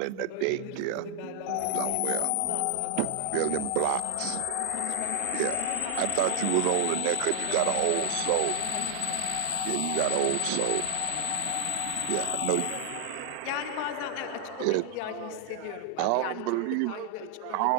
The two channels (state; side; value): different; both; correlation 0.00